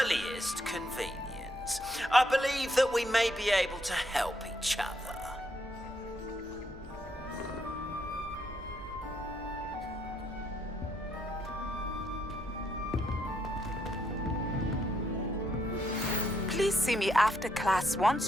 earliest convenience. I believe that we may be able to help each other. Please see me after class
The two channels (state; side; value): normal; both; correlation 0.75